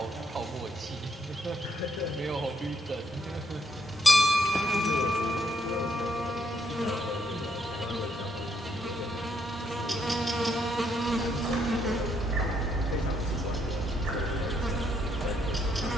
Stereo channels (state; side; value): normal; both; correlation 0.74